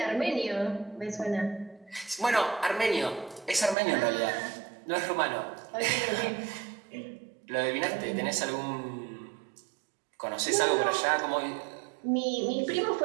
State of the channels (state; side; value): drops out; left; at 3.8 s